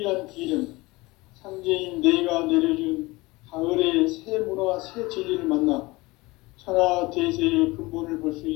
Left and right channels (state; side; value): quieter; right; 22.1 dB